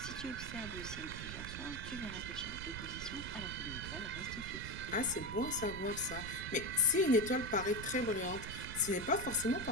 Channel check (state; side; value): noise; right; rumble, 8 dB below the sound